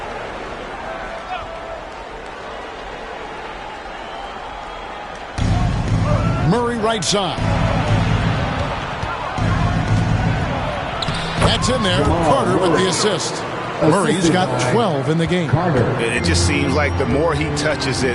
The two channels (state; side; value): identical; both; correlation 1.00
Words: Murray right side. That's in there. Carter with the assist. Murray's got 12 in the game. It just seems like the more he touches